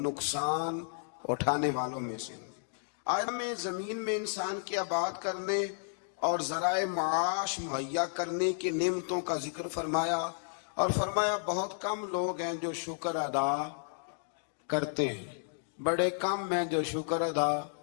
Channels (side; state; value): right; silent; digital silence